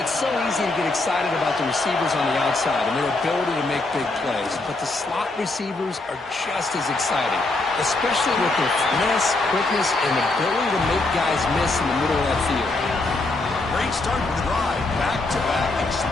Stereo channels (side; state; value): right; quieter; 3.1 dB